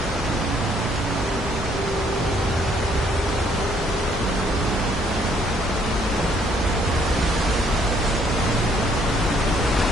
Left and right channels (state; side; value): normal; both; correlation 0.66